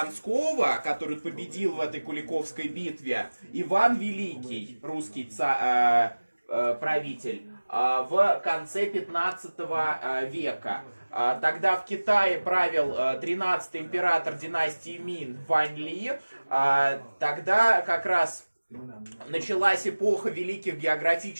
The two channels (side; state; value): both; inverted; correlation -1.00